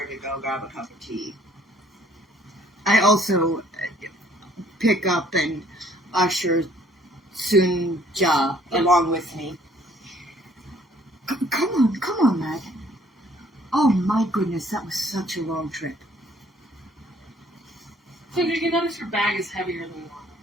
to go grab a cup of tea. I also pick up and usher Sunja along with me. Come on, lad. Oh my goodness, that was such a long trip. So you notice your bag is heavier than normal.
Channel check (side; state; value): both; normal; correlation 0.61